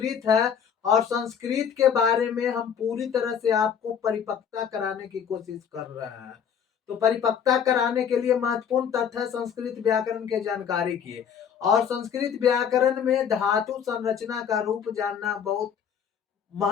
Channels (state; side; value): quieter; right; 7.7 dB